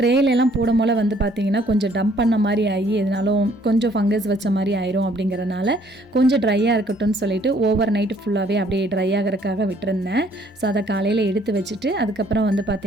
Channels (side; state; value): both; normal; correlation 0.62